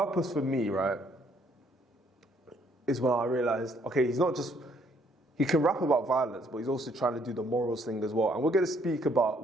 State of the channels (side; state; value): both; normal; correlation 0.67